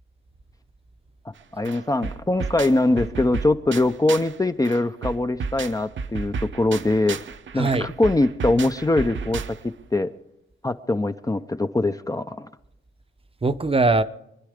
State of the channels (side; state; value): both; normal; correlation 0.83